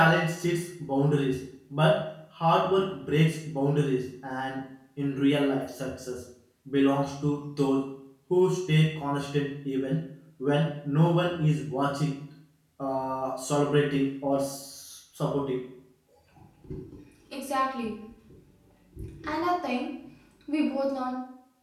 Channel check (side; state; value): both; identical; correlation 1.00